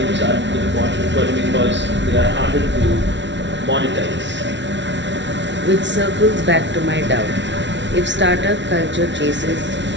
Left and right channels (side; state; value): left; late; 0.52 ms